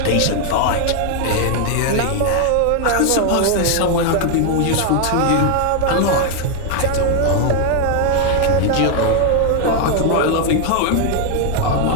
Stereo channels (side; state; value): both; different; correlation 0.00